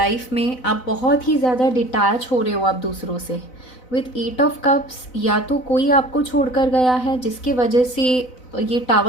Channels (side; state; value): right; late; 4.0 ms